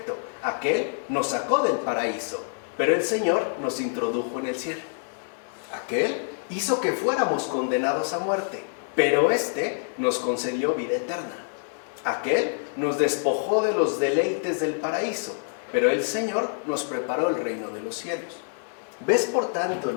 aquel nos sacó del paraíso, pero el Señor nos introdujo en el cielo. Aquel hizo que fuéramos condenados a muerte, pero éste nos concedió vida eterna. Aquel nos despojó de los deleites del paraíso, pero el Señor nos preparó el reino de los cielos. ¿Ves por tanto el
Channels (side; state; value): right; silent; digital silence